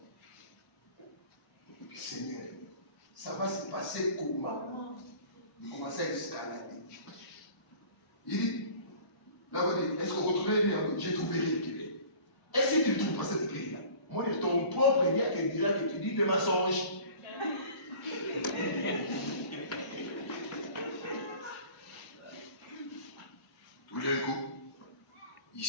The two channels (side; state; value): right; late; 1.0 ms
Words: Seigneur ça va se passer comment il commence à escalader il dit là vous dites est-ce qu'on retrouve j'ai trouvé rien est-ce que tu trouves pas cette clé là moi ton propre dia qui dira que tu dis des mensonges. Tout d'un coup, il